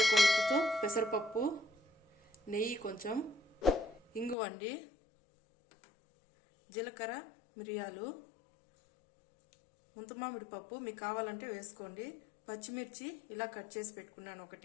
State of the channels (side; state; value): right; drops out; at 4.4 s